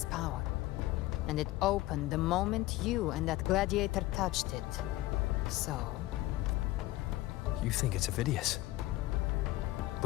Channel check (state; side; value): quieter; right; 17.6 dB